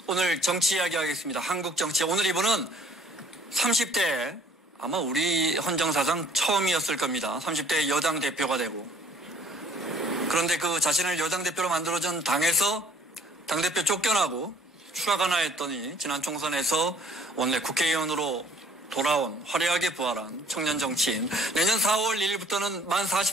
오늘 정치 이야기 하겠습니다. 한국 정치. 오늘 이분은 30대 아마 우리 헌정사상 처음이었을 겁니다. 30대 여당 대표가 되고. 그런데 그 자신을 여당 대표로 만들어준 당에서 당대표 쫓겨나고 추락하나 했더니 지난 총선에서 원내 국회의원으로 돌아온 화려하게 부활한 청년 정치인. 내년 4월 1일부터는 만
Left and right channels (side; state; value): both; normal; correlation 0.56